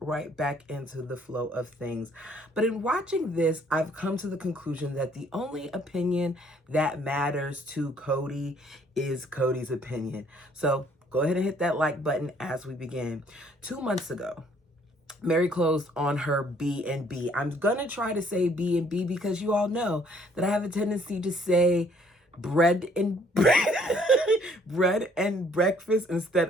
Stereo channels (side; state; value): both; normal; correlation 0.62